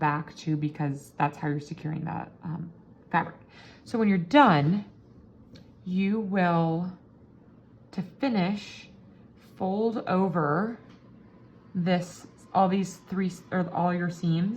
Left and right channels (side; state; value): both; identical; correlation 1.00